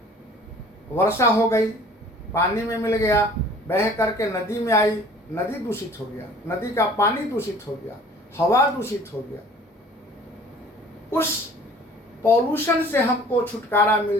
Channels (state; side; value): normal; both; correlation 0.50